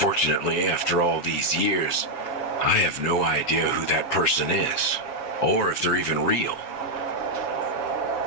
after all these years, I have no idea who that person is, or if they're even real.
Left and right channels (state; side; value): late; right; 7.1 ms